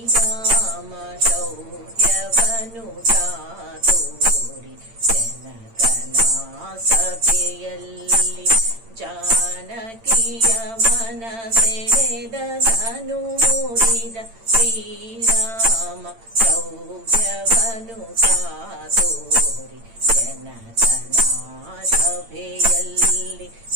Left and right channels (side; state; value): left; late; 8.8 ms